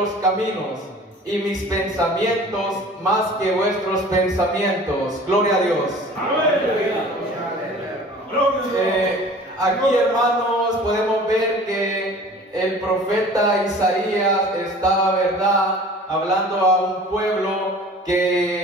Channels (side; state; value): both; normal; correlation 0.45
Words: caminos, y mis pensamientos más que vuestros pensamientos. Gloria a Dios. Aquí, hermanos, podemos ver que el profeta Isaías estaba, ¿verdad?, hablando a un pueblo